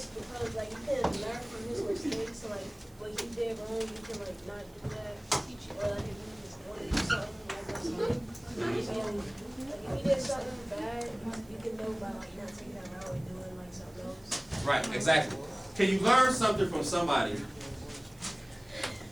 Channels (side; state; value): right; noise; hiss, 28 dB below the sound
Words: because like you can learn from his mistakes. So, like what he did wrong, you can like not do that. Or like if you just want to do something like that's fine. And like if he did something bad, you can know by like not taking that route and doing like something else. Right, exactly. Can you learn something from somebody